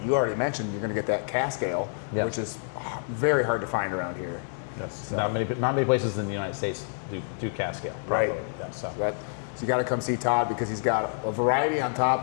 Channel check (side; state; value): right; silent; digital silence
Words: you already mentioned. You're going to get that cask ale, which is very hard to find around here. Yes. So, not many places in the United States do cask ale. Right. Yeah, so you got to come see Todd because he's got a variety on